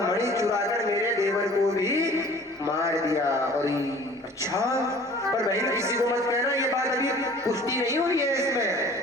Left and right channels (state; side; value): normal; both; correlation 0.48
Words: मणि चुराकर मेरे देवर को भी मार दिया। और अच्छा पर बहन किसी को मत कहना, ये बात अभी पुष्टि नहीं हुई है,